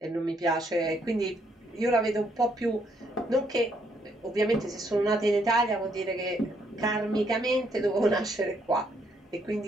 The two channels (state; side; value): normal; both; correlation 0.72